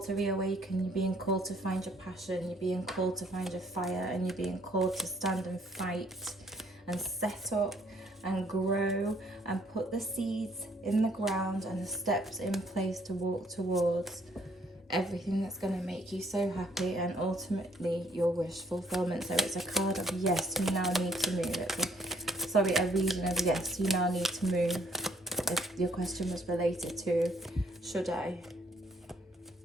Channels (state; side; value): normal; both; correlation 0.65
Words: to reawaken, you're being called to find your passion, you're being called to find your fire, and you're being called to stand and fight and set up and grow and put the seeds in the ground and the steps in place to walk towards everything that's going to make you so happy and ultimately your wish fulfillment. So it's a card of yes, you now need to move. It's a reading of yes, you now need to move. If your question was related to should I,